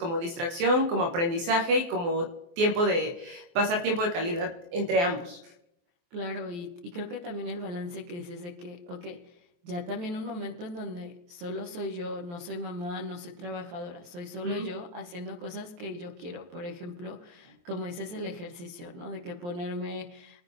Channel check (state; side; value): late; left; 23 ms